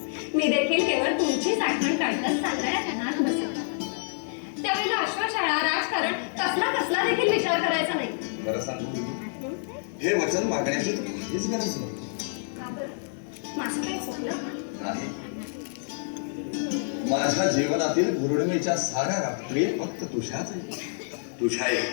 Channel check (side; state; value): right; silent; 60 dB below the other